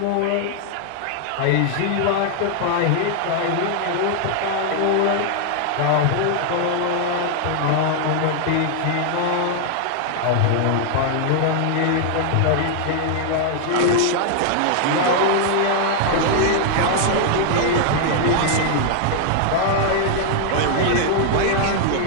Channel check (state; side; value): different; both; correlation 0.00